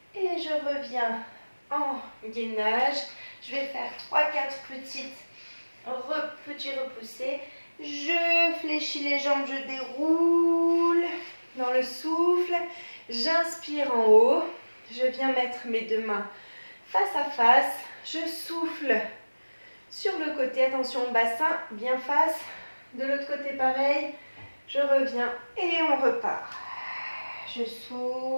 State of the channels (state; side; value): inverted; both; correlation -1.00